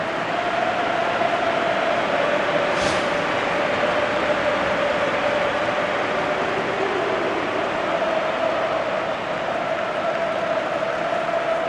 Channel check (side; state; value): both; identical; correlation 1.00